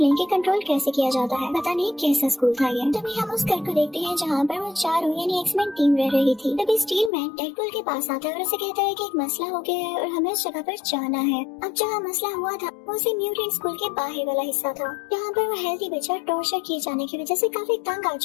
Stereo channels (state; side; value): drops out; right; at 7.1 s